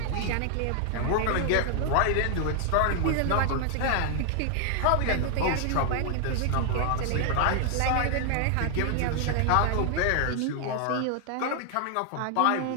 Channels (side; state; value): both; different; correlation 0.00